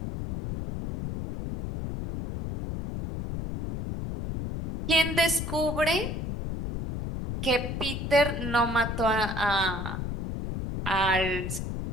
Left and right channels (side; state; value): left; noise; rumble, 4 dB below the sound